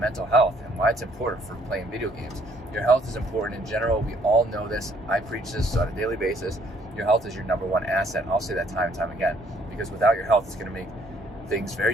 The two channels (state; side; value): normal; both; correlation 0.64